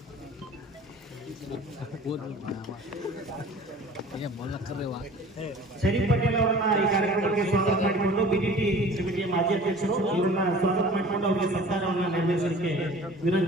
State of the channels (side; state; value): both; normal; correlation 0.45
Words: ಶರೀಫ್ ಪಟೇಲ್ ಅವರನ್ನ ಈ ಕಾರ್ಯಕ್ರಮಕ್ಕೆ ಸ್ವಾಗತ ಮಾಡಿಕೊಂಡು ಬಿಡಿಟಿ ಕಮಿಟಿಯ ಮಾಜಿ ಅಧ್ಯಕ್ಷರು ಇವರನ್ನ ಸ್ವಾಗತ ಮಾಡಿಕೊಂಡು ಅವರಿಗೆ ಸತ್ಕಾರವನ್ನು ನೆರವೇರಿಸಲಿಕ್ಕೆ